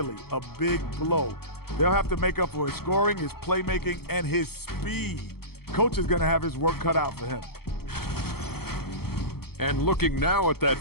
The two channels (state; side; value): late; right; 0.96 ms